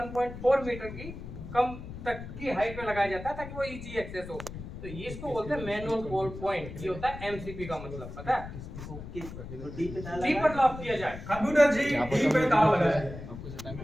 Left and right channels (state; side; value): noise; left; rumble, 11 dB below the sound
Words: मीटर की कम तक की हाइट पे लगाया जाता है ताकि वो इजी एक्सेस हो। तो ये इसको बोलते हैं मैनुअल कॉल पॉइंट। ये होता है एमसीपी का मतलब, पता है? ओके तो डी पे ताला डी पर लॉक किया जाए। कंप्यूटर जी डी पे ताला लगाया जाए।